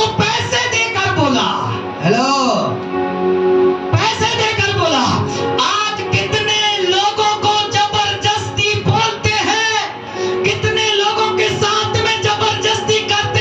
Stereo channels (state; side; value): identical; both; correlation 1.00